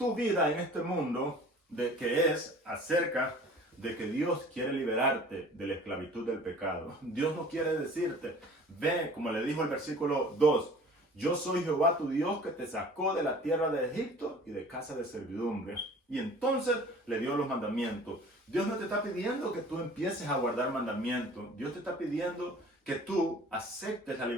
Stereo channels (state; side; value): normal; both; correlation 0.47